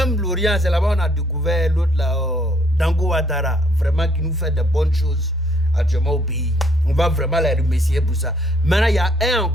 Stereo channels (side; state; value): both; normal; correlation 0.66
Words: Lorient, c'est là-bas on a découvert l'autre là, Dango Ouattara, vraiment qui nous fait de bonnes choses actuellement au pays. On va vraiment les remercier pour ça. Maintenant, il y a un